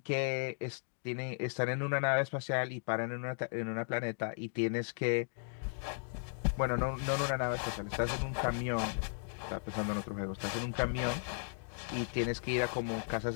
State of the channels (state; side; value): silent; right; digital silence